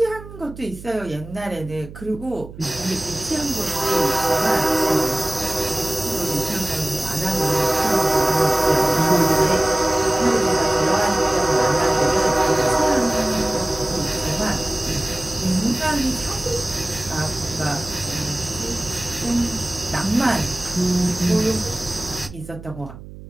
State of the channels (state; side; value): noise; right; hum, 15 dB below the sound